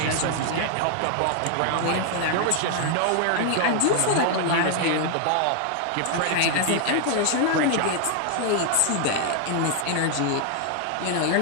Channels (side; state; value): both; different; correlation 0.00